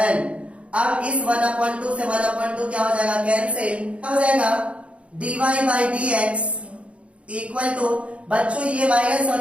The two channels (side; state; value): left; late; 0.061 ms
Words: अब इस 1 अपॉन 2 से 1 अपॉन 2 क्या हो जाएगा कैंसिल, क्या हो जाएगा dy by dx equal to, बच्चों ये माइनस और